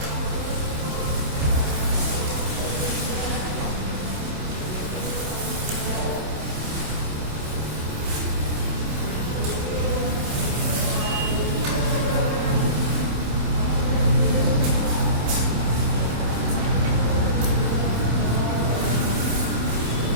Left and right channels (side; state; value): left; late; 27 ms